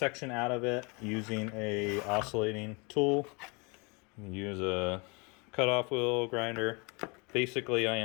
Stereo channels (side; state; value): right; quieter; 30.3 dB